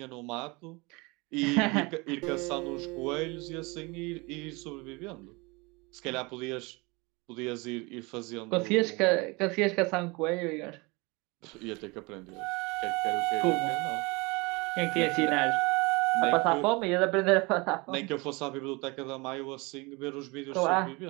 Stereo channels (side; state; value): left; quieter; 26.3 dB